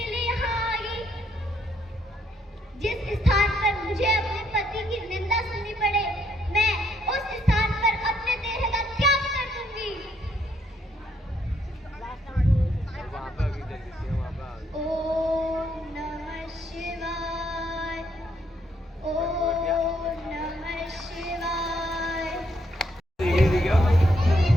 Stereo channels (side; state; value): both; normal; correlation 0.72